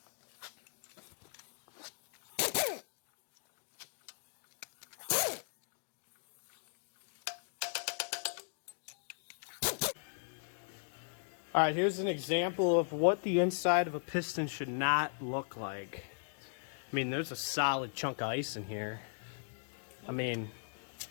All right, here's an example of what the inside of a piston should not look like. I mean, there's a solid chunk of ice in here. I mean,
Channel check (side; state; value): right; silent; digital silence